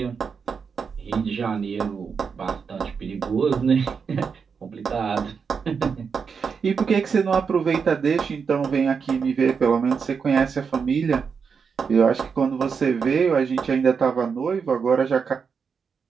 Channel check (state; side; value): quieter; left; 6.0 dB